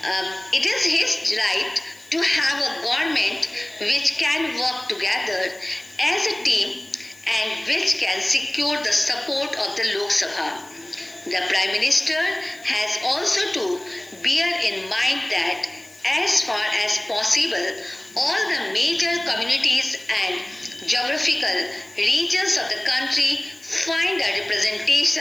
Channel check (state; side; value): noise; left; hiss, 24 dB below the sound